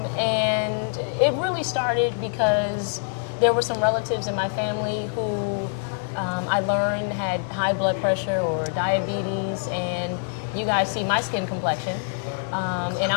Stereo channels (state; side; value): silent; right; 62 dB below the other